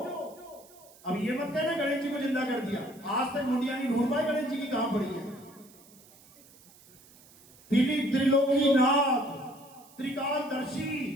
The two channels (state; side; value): noise; right; hiss, 25 dB below the sound